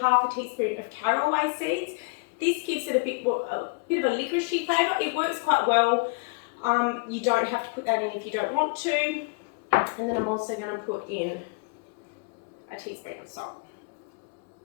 half a teaspoon of caraway seeds. This gives it a bit of a liquorice flavour. It works quite well. You don't have to put that in if you don't want to. And then I'm also going to put in a teaspoon of salt.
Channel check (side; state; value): right; quieter; 32.1 dB